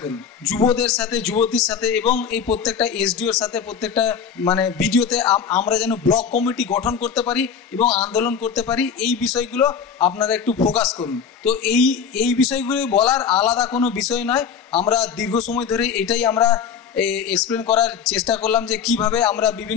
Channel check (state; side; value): quieter; right; 6.9 dB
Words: করুন যুবদের সাথে, যুবতীর সাথে এবং এই প্রত্যেকটা এসডিওর সাথে, প্রত্যেকটা ভিডিওতে আমরা যেন ব্লক কমিটি গঠন করতে পারি এবং আন্দোলন করতে পারি। এই বিষয়গুলো আপনারা একটু ফোকাস করুন। তো এই বিষয়গুলো বলার আলাদা কোনো বিষয় নয়, আমরা দীর্ঘ সময় ধরে এটাই আমরা এক্সপ্লেন করার চেষ্টা করলাম যে কিভাবে আমরা